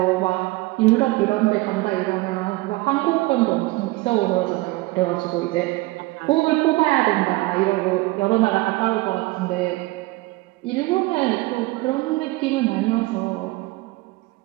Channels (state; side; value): quieter; left; 21.2 dB